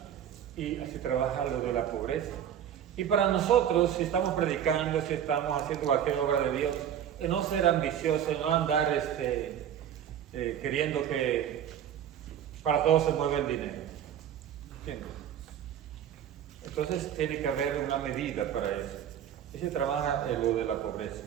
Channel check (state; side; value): quieter; left; 9.7 dB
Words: Y así trabaja lo de la pobreza. Y para nosotros, si estamos predicando, si estamos haciendo cualquier obra de Dios, no ser ambicioso, no andar queriendo que para todo se mueva el dinero. ¿Entiendes? Entonces tiene que haber una medida para eso. Y se trabaja en lo de la pobreza.